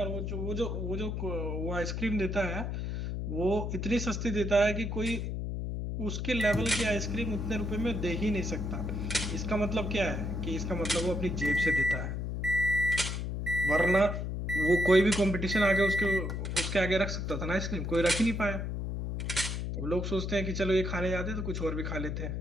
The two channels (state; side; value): noise; left; hum, 3 dB below the sound